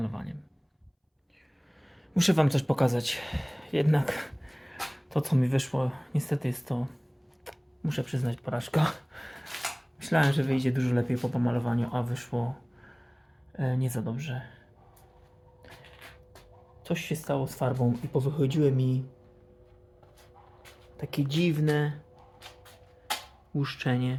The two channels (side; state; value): both; identical; correlation 1.00